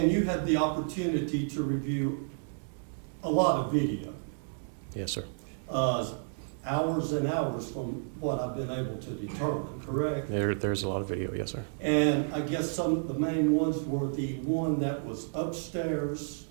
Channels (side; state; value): left; silent; digital silence